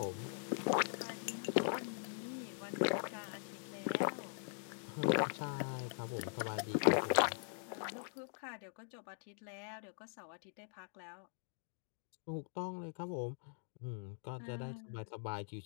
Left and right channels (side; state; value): right; silent; digital silence